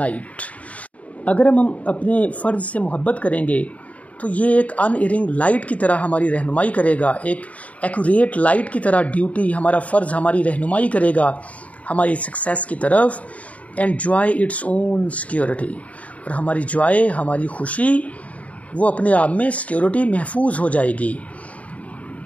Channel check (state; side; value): late; right; 0.068 ms